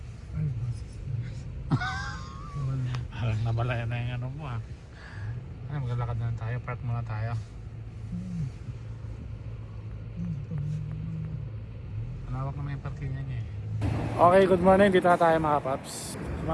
Ay, basis. Parang namalayan na yung ano mo ah. Ay, maglalakad na lang tayo. Park muna tayo. Malawak naman yung parking niya eh. Okay, good morning. Dito na tayo mga paps.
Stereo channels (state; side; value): identical; both; correlation 1.00